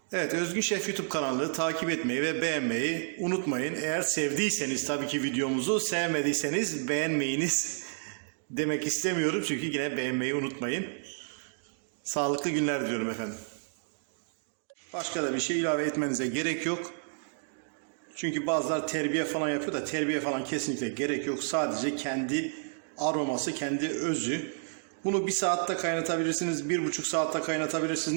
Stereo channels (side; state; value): left; silent; digital silence